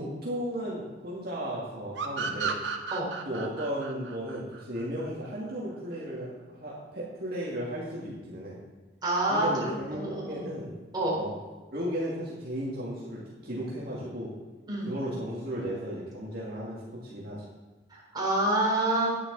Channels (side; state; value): both; normal; correlation 0.19